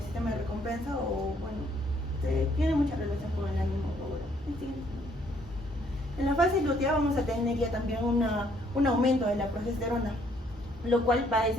sistema de recompensa, o bueno, tiene mucha relación con el ánimo. En la fase lútea vamos a tener ya también un aumento de la progesterona, lo cual va a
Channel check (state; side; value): normal; both; correlation 0.66